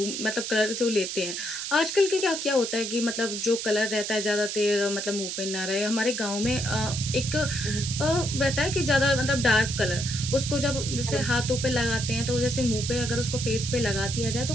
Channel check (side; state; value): right; noise; hiss, 5 dB below the sound